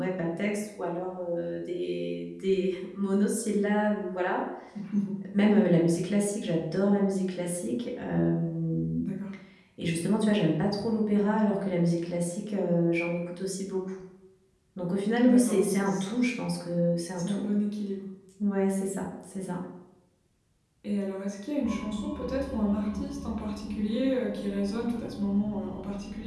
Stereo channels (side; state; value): both; identical; correlation 1.00